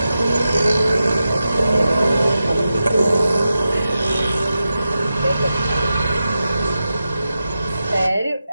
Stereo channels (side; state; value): both; inverted; correlation -0.91